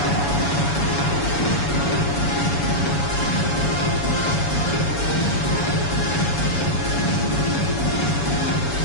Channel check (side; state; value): right; late; 7.1 ms